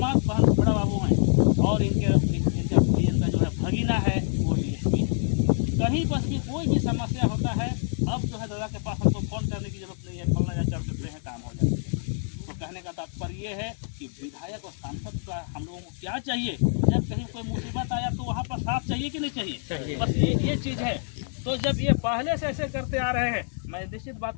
बहन बड़ा बाबू हैं, और इनका जो है भगीना है वो DSP है। कहीं पर भी कोई भी समस्या होता है, अब जो है दादा के पास हमको फ़ोन करने की जरूरत नहीं है, फलना जा कर सकते हैं, काम ये है कि विधायक और सांसद का हम लोगों को क्या चाहिए, जब कहीं कोई मुसीबत आया तो वहाँ पर साथ चाहिए कि नहीं चाहिए, बस ये चीज़ है। तो जब ये पहले से ऐसे करते आ रहे हैं, मैं निश्चित बात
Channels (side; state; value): right; silent; digital silence